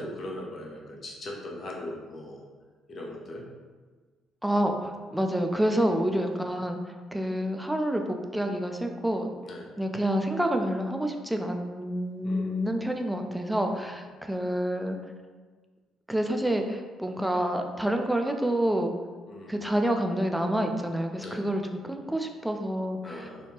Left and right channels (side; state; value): both; normal; correlation 0.89